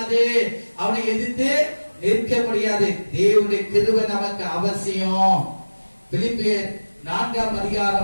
அவனை எதிர்த்து நிற்க முடியாது. தேவனுடைய கிருபை நமக்கு அவசியம். பிலிப்பியர் 4ஆம்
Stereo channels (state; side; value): inverted; both; correlation -1.00